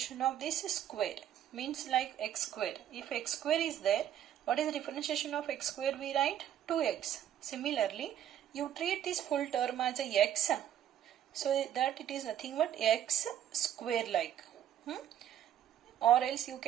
of this square, means like x square. If x square is there, what is the differentiation of x square? We write 2x. Similarly, you treat this full term as a x, so that it is nothing but x square like. Or else you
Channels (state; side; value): quieter; left; 10.7 dB